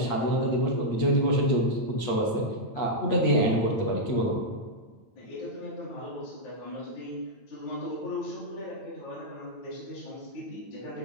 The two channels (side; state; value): right; late; 8.9 ms